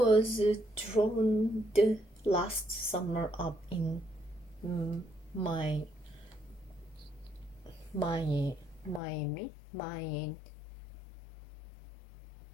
drowned last summer up in Miami,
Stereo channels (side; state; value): right; drops out; at 9.0 s